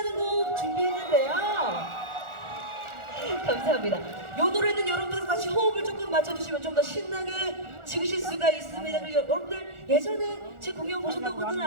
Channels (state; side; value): late; left; 1.4 ms